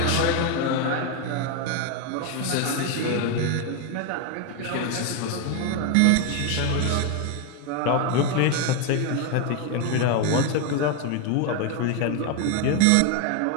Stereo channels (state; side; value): different; both; correlation 0.01